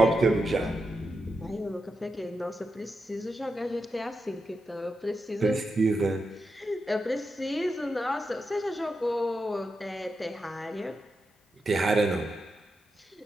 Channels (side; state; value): both; normal; correlation 0.87